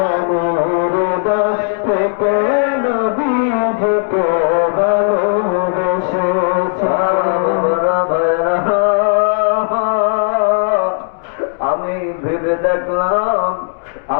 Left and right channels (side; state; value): right; silent; digital silence